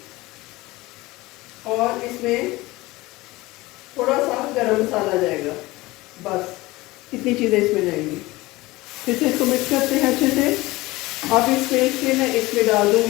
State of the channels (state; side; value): quieter; right; 20.3 dB